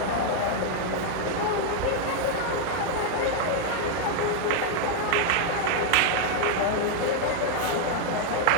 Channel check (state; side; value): different; both; correlation 0.00